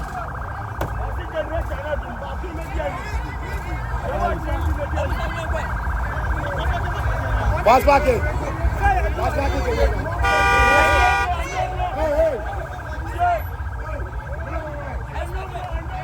Pass back it. Pass back it.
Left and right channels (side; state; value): both; identical; correlation 1.00